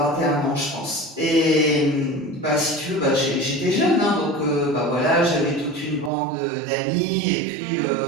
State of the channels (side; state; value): left; drops out; at 6.1 s